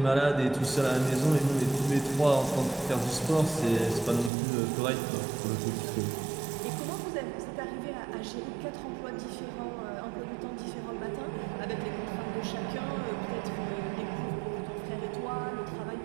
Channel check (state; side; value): drops out; left; at 4.3 s